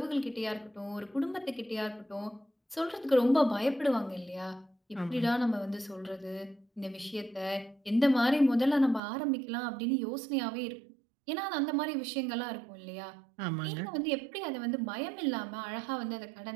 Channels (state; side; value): drops out; left; at 9.0 s